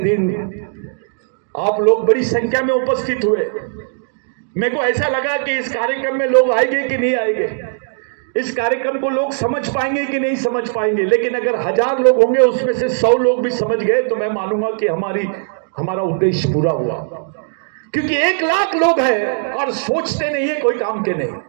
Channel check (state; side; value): silent; left; digital silence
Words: आप लोग बड़ी संख्या में उपस्थित हुए। मेरे को ऐसा लगा कि इस कार्यक्रम में लोग आएंगे कि नहीं आएंगे, इस कार्यक्रम को लोग समझ पाएंगे कि नहीं समझ पाएंगे। लेकिन अगर 1000 लोग होंगे, उसमें से 100 लोग भी समझ गए तो मैं मानूंगा कि हमारा उद्देश्य पूरा हुआ। क्योंकि 1 लाख लोग हैं और सोचते नहीं है, कोई काम के नहीं,